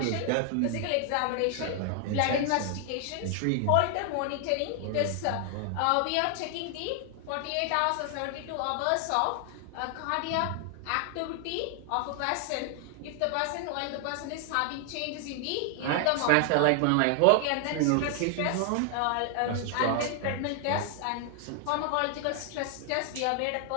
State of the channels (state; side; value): different; both; correlation 0.00